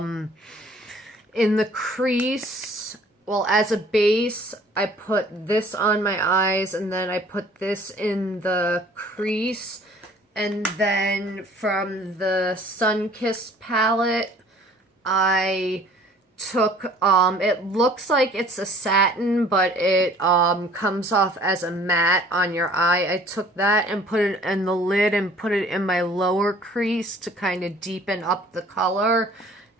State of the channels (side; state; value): both; normal; correlation 0.53